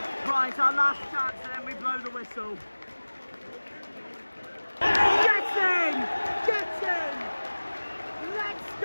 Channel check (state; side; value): inverted; both; correlation -1.00